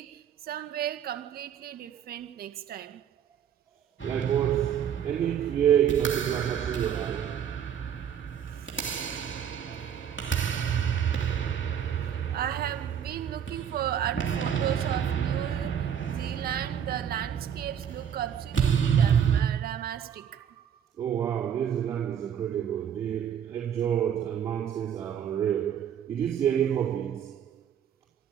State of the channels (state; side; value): quieter; left; 8.8 dB